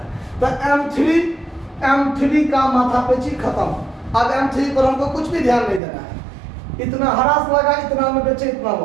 तो M3 का माथापेची खत्म। अब M3 पर हमको कुछ भी ध्यान नहीं देना है। इतना हरास लगा, इतना में बेचे, इतना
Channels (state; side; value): drops out; left; at 5.8 s